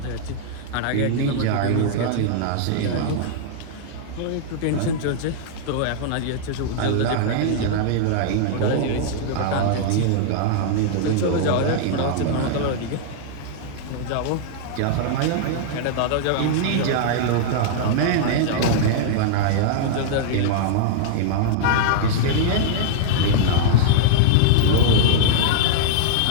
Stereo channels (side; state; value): both; different; correlation -0.02